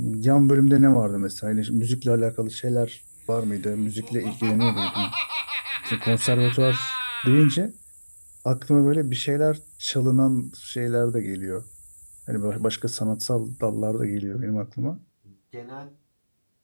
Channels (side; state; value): both; inverted; correlation -1.00